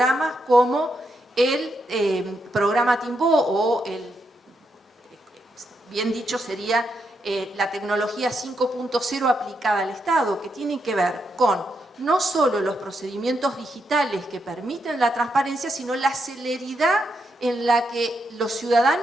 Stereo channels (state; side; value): normal; both; correlation 0.81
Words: como el programa Timbó o bien dicho sería la tecnología 5.0 aplicada al Estado, que tiene que ver con no solo los procedimientos digitales que permiten la transparencia, sino la celeridad en la que los